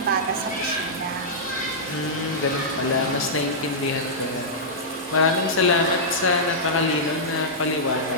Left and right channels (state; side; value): normal; both; correlation -0.11